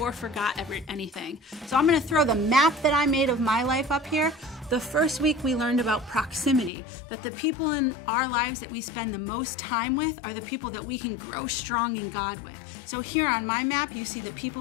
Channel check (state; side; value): drops out; right; at 6.7 s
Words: forgot anything. So I'm going to throw the map that I made of my life up here. The first week we learned about proximity, that the people in our lives that we spend the most time with are the people that we can grow strong in God with. So here on my map, you see the